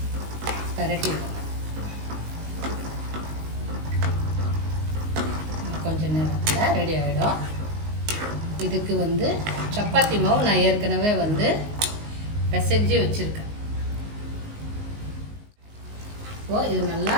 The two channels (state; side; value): late; left; 19 ms